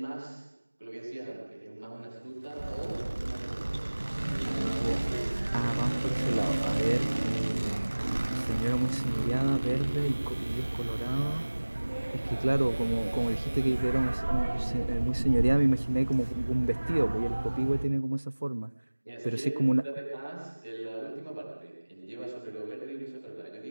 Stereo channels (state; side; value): inverted; both; correlation -1.00